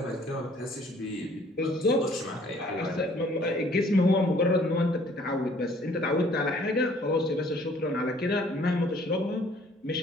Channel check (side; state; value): both; normal; correlation 0.58